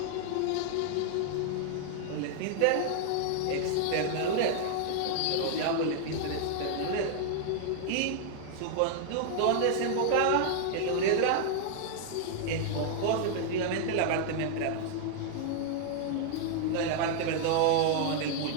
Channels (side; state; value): both; different; correlation 0.00